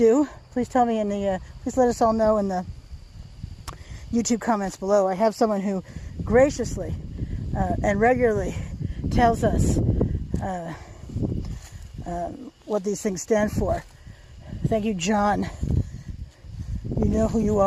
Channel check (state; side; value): identical; both; correlation 1.00